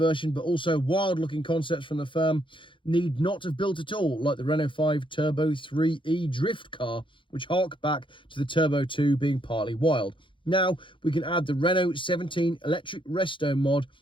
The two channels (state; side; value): late; right; 0.24 ms